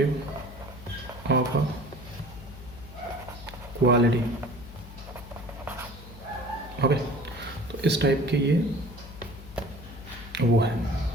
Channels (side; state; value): left; noise; hum, 15 dB below the sound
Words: ओके, तो इस टाइप के ये वो है,